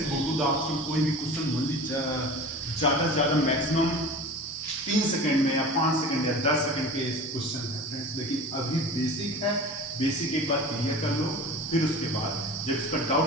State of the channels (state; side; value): normal; both; correlation 0.36